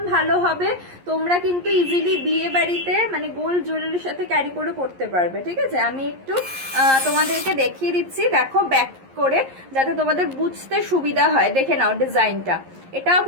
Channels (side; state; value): left; late; 11 ms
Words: ভালো হবে। তোমরা কিন্তু ইজিলি বিয়ে বাড়িতে মানে গোল্ড জুয়েলারির সাথে ক্যারি করে পড়তে পারবে, ঠিক আছে। আমি একটু তোমাদেরকে দেখিয়ে দিচ্ছি। দেখো ব্যাক করে, যাতে তোমাদের বুঝতে সুবিধা হয়। দেখে নাও ডিজাইনটা, এটাও